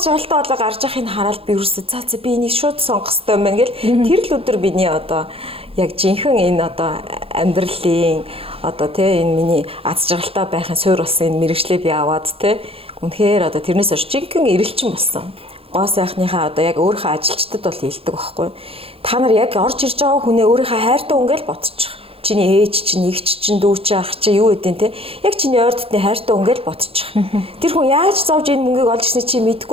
жаргалтай болоо гарч явахыг хараад би ерөөсөө за би энийг шууд сонгох хэрэгтэй юм байна гэл. Тэр л өдөр биний одоо яг жинхэнэ энэ одоо амьдралын одоо тий энэ миний аз жаргалтай байхын суурь болсон энэ мэрэгчлээ би аваад тий үнэхээр одоо тэрнээс хойш жинхэнэ эрэлчин болсон. Гоо сайхныхаа одоо яг өөрийнхөө ажилчдад бол хэлдэг байхгүй. Та нар яг орж ирж байгаа хүнээ өөрийнхөө хайртай үнгээл бодчих. Чиний ээж чинь, эгч чинь, дүү чинь, ах чинь юу гэдэг те. Яг чиний ойр дотны хайртай үнгээл бодчих. Тэр хүн яаж зовж энэ мөнгийг олж ирсний чи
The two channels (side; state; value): left; late; 0.27 ms